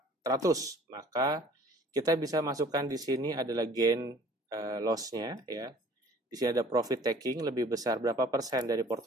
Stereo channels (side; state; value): both; normal; correlation 0.52